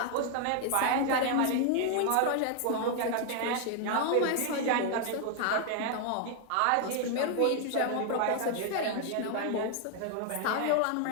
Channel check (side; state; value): both; different; correlation 0.00